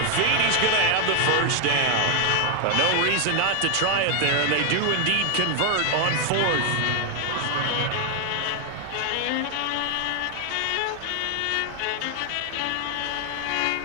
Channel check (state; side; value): different; both; correlation 0.01